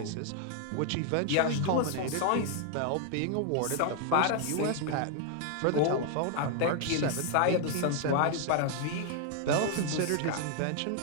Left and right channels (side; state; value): both; different; correlation 0.00